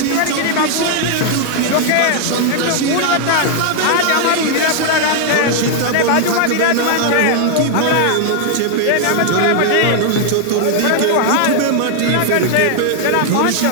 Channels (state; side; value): different; both; correlation 0.00